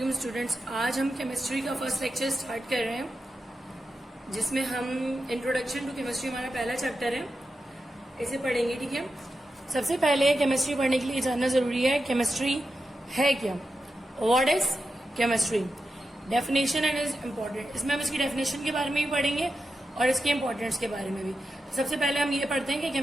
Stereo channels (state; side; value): normal; both; correlation 0.89